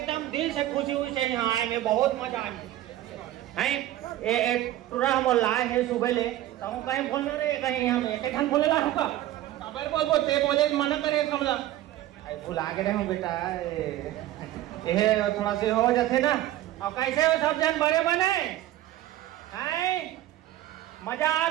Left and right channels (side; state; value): left; quieter; 14.2 dB